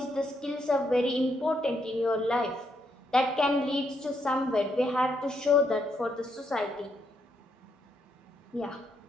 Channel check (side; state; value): both; normal; correlation 0.77